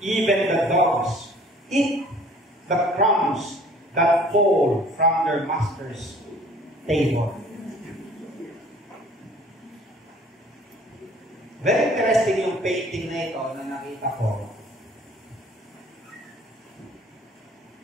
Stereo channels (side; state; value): both; normal; correlation 0.52